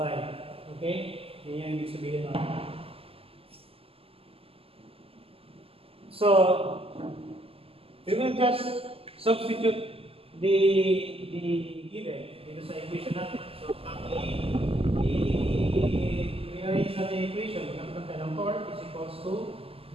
Okay? Yan yung ibig sabihin natin. So, we will just substitute the given dito sa equation natin. So, i-rearrange natin yung equation. Magkakaroon tayo ng torque is equals to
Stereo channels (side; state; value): left; late; 0.28 ms